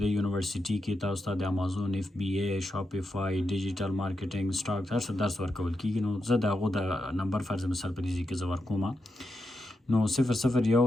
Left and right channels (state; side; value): normal; both; correlation 0.86